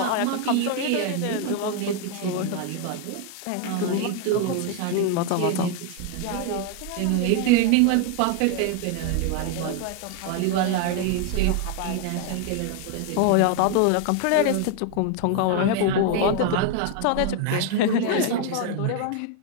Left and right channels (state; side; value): different; both; correlation 0.01